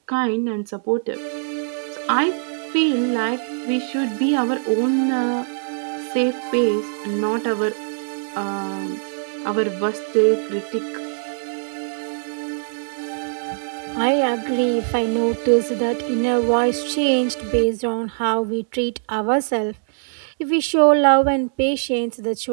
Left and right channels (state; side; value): silent; left; digital silence